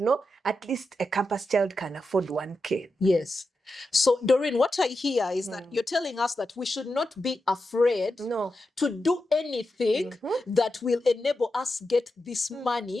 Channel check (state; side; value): normal; both; correlation 0.89